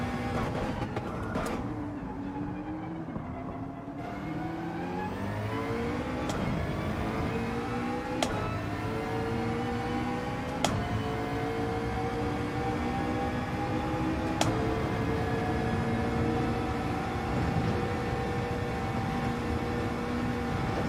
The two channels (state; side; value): identical; both; correlation 1.00